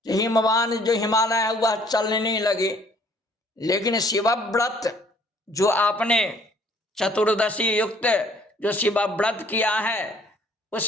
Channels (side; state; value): both; normal; correlation 0.59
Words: हिमवान जो हिमालय है वह चलने लगे। लेकिन शिवव्रत जो आपने चतुर्दशी युक्त जो शिवव्रत किया है